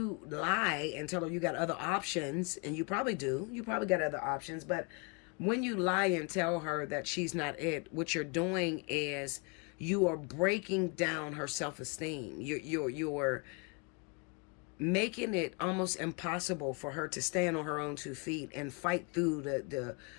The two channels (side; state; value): right; quieter; 32.5 dB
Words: lie and tell her you got other options, and you probably do, you probably got other options, but when you lie and tell her that she's not it, what you're doing is you are breaking down her self-esteem. You're making it almost impossible for her to stand on her own 2 feet and fight through the